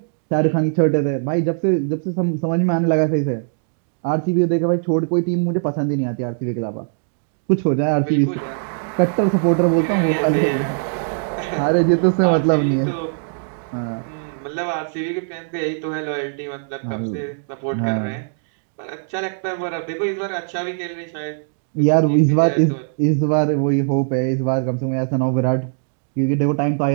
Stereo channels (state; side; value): silent; left; digital silence